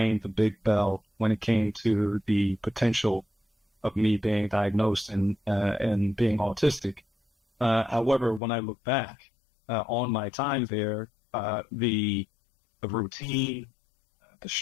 the big bell when it came to the potential of me being diagnosed and being autistic. However, when I look back on my time there, the routine, the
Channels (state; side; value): drops out; right; at 8.4 s